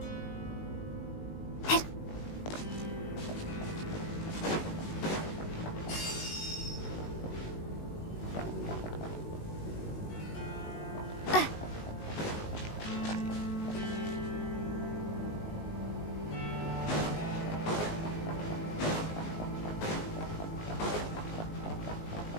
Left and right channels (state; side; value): late; right; 19 ms